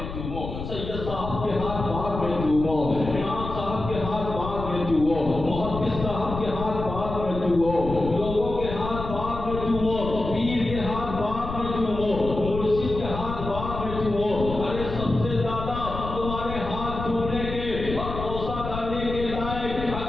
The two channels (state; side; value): noise; left; rumble, 7 dB below the sound